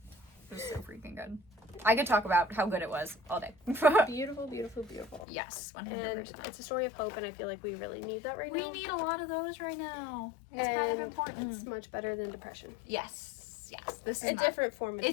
It was so freaking good. I could talk about how good it was all day. Beautiful, beautiful, beautiful. Yes, 100%. And it's a story of hope, and I feel like we really need that right now. We need a lot of those right now. It's kind of important. It's much better than depression. Yes. This is a different form of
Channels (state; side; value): drops out; right; at 5.2 s